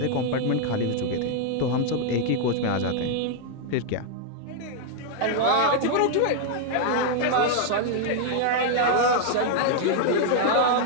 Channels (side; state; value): both; different; correlation -0.01